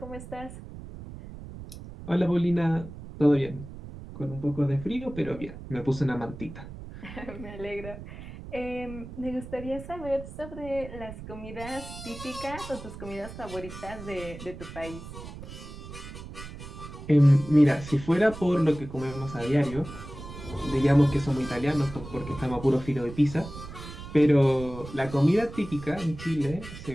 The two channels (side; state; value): right; noise; rumble, 13 dB below the sound